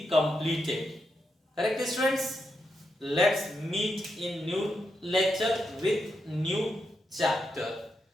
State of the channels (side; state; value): both; normal; correlation 0.84